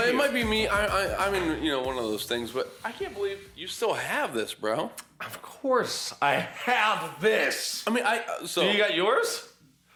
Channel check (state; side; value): identical; both; correlation 1.00